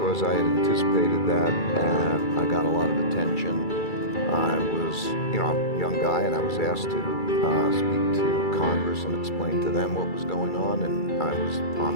I had anticipated that, and I got a lot of attention, I was, I'm a young guy, and I was asked to speak to Congress and explain to them what was going on, and I was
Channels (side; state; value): right; late; 2.3 ms